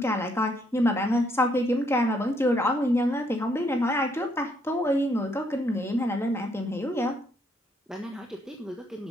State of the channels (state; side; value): normal; both; correlation 0.71